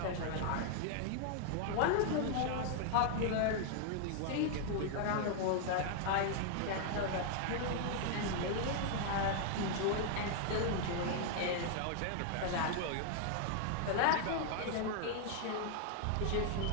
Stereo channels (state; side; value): different; both; correlation 0.00